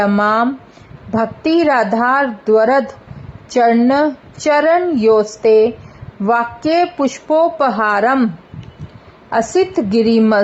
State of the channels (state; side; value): identical; both; correlation 1.00